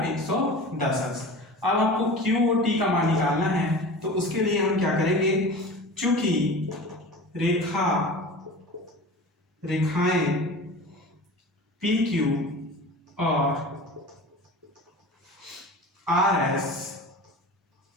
110 अंश। अब हमको QOT का मान निकालना है, तो उसके लिए हम क्या करेंगे, चूंकि रेखाएं PQ और RS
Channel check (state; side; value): normal; both; correlation 0.35